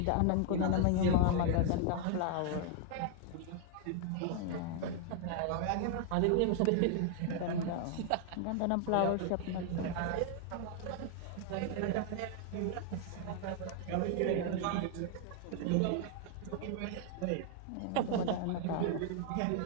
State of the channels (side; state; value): both; different; correlation 0.00